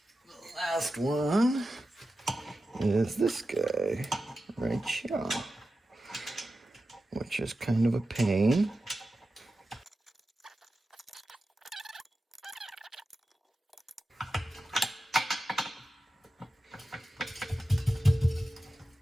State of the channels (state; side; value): normal; both; correlation 0.92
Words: last one is this guy right here, which is kind of a pain.